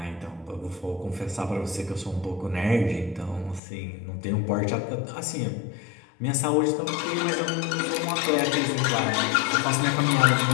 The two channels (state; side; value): drops out; right; at 3.6 s